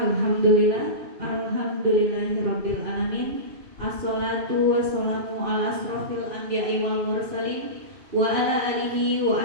alamin. Assalatu wassalamu ala asrofil anbiya'i wal mursalin wa ala alihi wa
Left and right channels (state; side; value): late; left; 2.7 ms